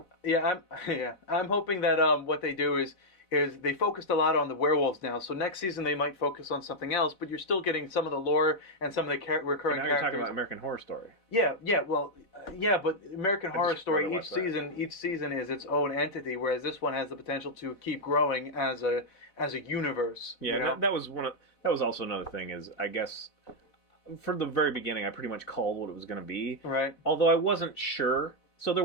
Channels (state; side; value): late; right; 4.0 ms